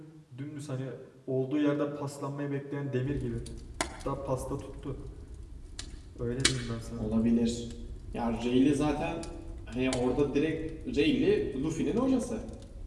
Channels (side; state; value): both; identical; correlation 1.00